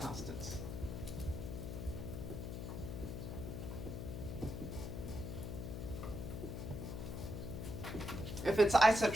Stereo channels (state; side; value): noise; left; hum, 5 dB below the sound